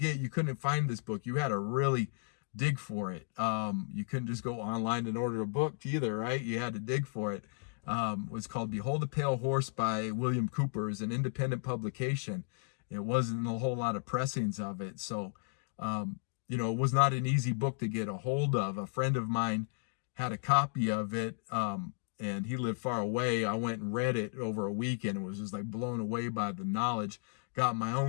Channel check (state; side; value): silent; right; digital silence